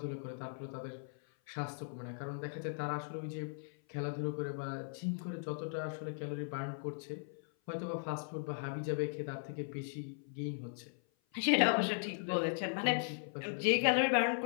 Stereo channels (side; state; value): right; silent; 52 dB below the other